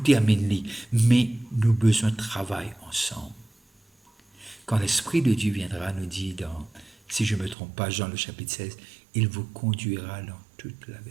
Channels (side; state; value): left; drops out; at 7.6 s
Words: terminer, mais nous avons besoin de travail ensemble. Quand l'Esprit de Dieu viendra, nous dit dans, si je ne me trompe pas, Jean le chapitre 16, il vous conduira dans toute la